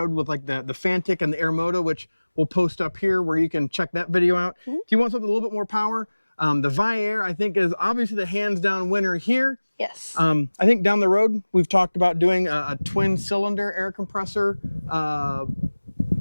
with like the Fantic and the Airmoto, which we'll post up here where you can check that video out. If you want something a little bit more power, the Viair, I think, is obviously the hands-down winner here. Yes. I think down the road, we've talked about doing a twin-cylinder air compressor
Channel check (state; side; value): inverted; both; correlation -1.00